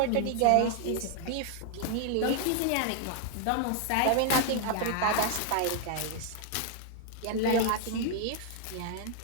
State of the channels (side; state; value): both; different; correlation 0.00